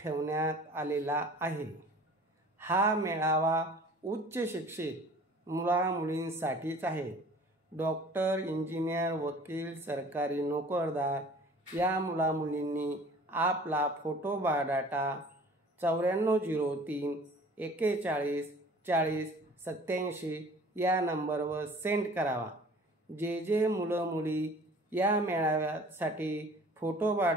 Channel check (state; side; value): normal; both; correlation 0.48